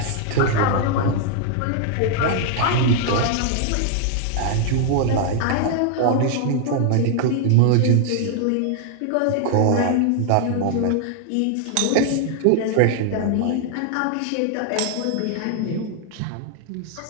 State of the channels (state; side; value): different; both; correlation 0.00